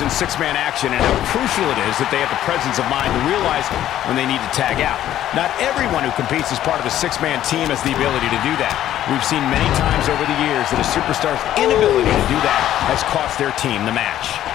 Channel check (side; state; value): right; quieter; 12.2 dB